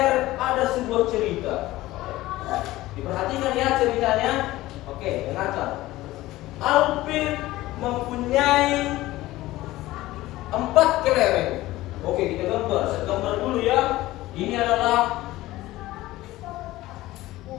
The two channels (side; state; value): right; quieter; 17.2 dB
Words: ada sebuah cerita. Diperhatikan ya ceritanya. Oke, dengarkan. Alvin mempunyai 4 kelereng. Oke, kita gambar. Saya gambar dulu ya. Ini adalah